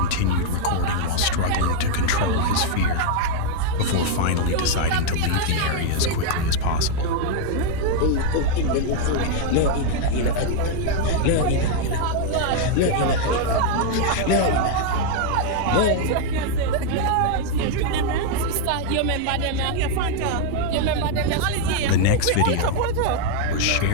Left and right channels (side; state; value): both; different; correlation 0.00